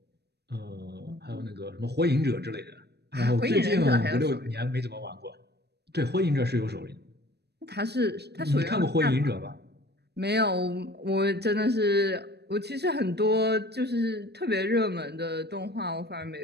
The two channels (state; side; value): late; left; 0.48 ms